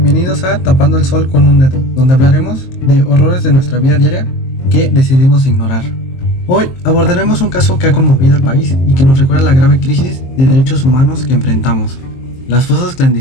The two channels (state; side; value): late; right; 23 ms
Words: Bienvenidos a Tapando el Sol con un Dedo, donde hablaremos de horrores de nuestra vida diaria que decidimos ignorar. Hoy abordaremos un caso que ha conmovido al país y que nos recuerda la grave crisis de derechos humanos que enfrentamos: las fosas